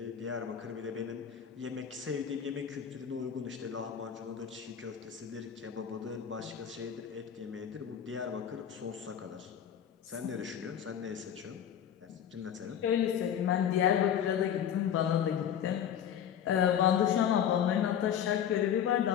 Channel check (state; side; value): quieter; right; 9.1 dB